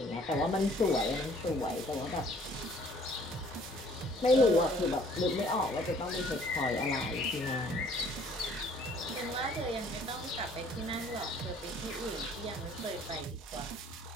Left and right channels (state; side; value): normal; both; correlation 0.57